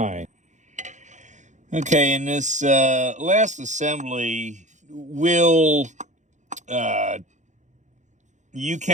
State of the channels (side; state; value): left; late; 0.35 ms